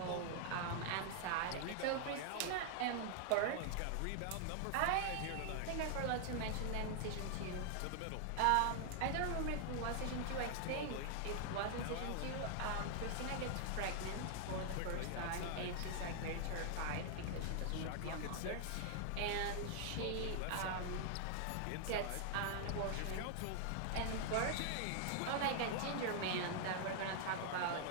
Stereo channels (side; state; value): both; different; correlation 0.00